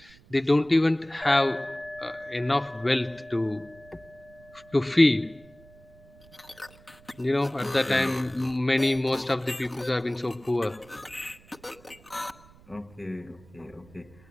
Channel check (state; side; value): noise; right; rumble, 25 dB below the sound